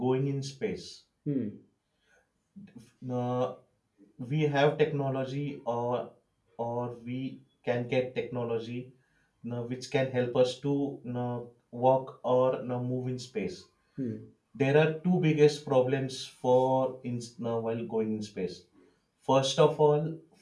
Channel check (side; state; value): both; identical; correlation 1.00